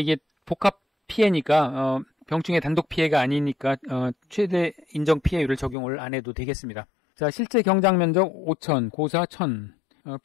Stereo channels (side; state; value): right; drops out; at 5.8 s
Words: 복합 피해니까 병충해 단독 피해가 아니니까 최대 인정 피해율을 적용을 안 해도 되겠습니다. 자, 실제 경작 면적 5,000, 고사 1,000,